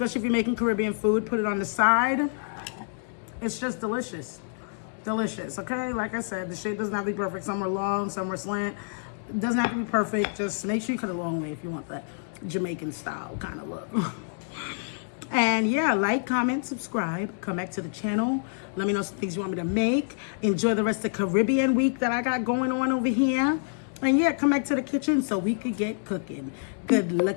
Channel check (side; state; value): right; silent; digital silence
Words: if you're making Caribbean food. Put it on the side. It's just delicious. Delicious, okay? Like I said, the shape doesn't have to be perfect. Some are long, some are slant. It doesn't have to be perfect. Just make sure you cut it a long way if you want that Jamaican style kind of look. And yeah, like, comment, subscribe. Come back to the channel. Let me know some things you want me to make. Enjoy the rest of Caribbean week that I got going on over here. And yeah, come back to the kitchen so we could get cooking. Good